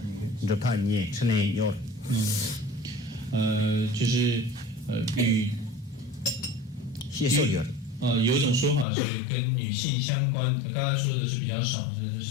얘기. 좋다. 예. 천에 요. 就是与谢受有。有一种说法是跟女性相关的，刚才说的是比较少，是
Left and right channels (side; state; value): right; drops out; at 8.8 s